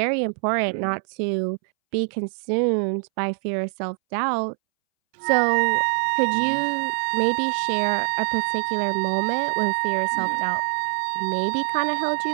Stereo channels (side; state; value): left; silent; 62 dB below the other